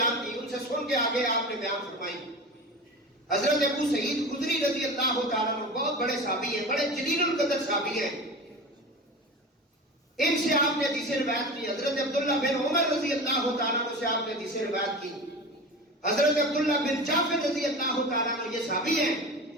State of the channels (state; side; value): normal; both; correlation 0.31